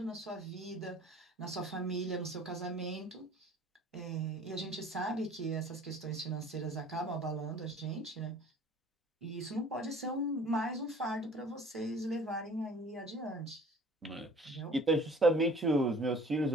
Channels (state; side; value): normal; both; correlation 0.49